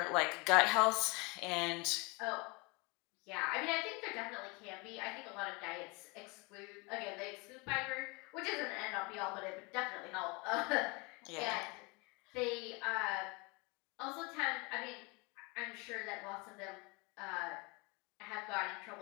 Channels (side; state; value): right; quieter; 27.9 dB